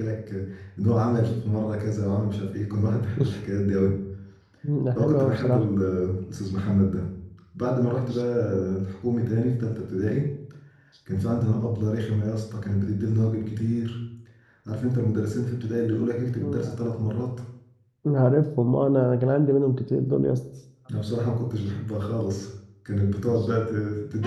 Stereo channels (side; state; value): both; identical; correlation 1.00